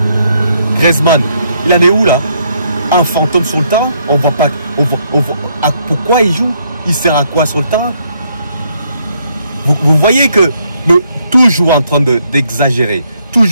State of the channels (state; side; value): inverted; both; correlation -0.72